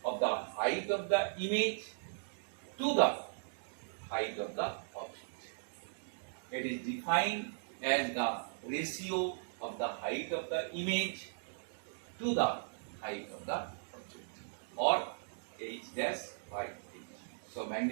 of the height of the image to the height of the object. It is defined as the ratio of the height of the image to the height of the object, or h dash by h. So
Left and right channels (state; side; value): silent; left; digital silence